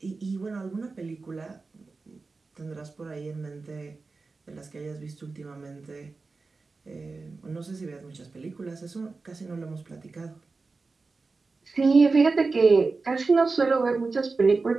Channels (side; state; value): left; quieter; 4.0 dB